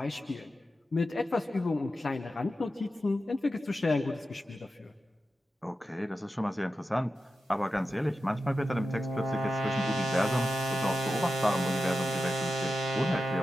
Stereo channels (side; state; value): both; normal; correlation 0.91